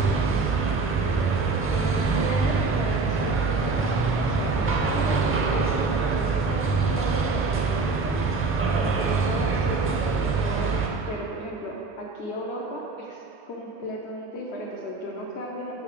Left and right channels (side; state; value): left; quieter; 3.9 dB